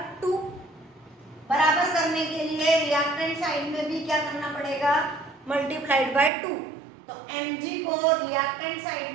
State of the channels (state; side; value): drops out; left; at 6.3 s